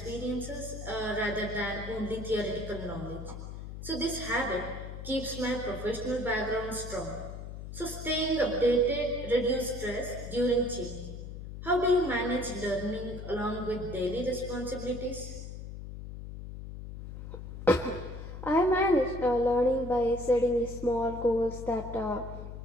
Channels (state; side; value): noise; left; hum, 9 dB below the sound